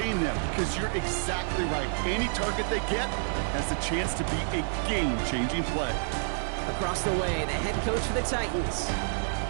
them because you're exactly right. Any target they get has the chance to be a game-changing play. Across the way, the head coach for the Titans.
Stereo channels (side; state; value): left; silent; 59 dB below the other